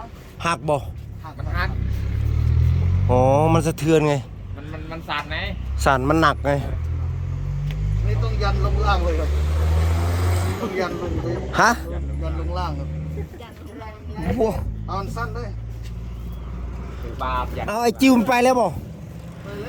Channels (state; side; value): identical; both; correlation 1.00